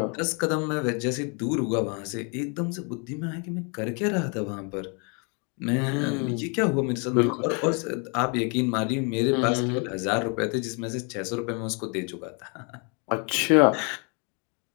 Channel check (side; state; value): right; quieter; 35.5 dB